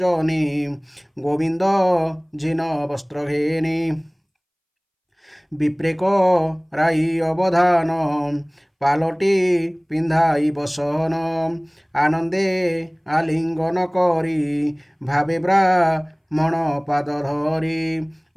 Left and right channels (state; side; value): identical; both; correlation 1.00